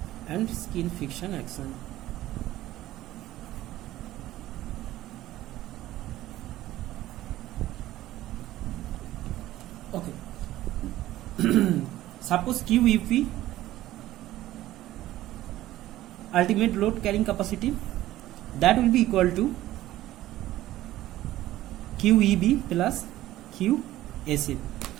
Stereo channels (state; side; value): quieter; left; 15.0 dB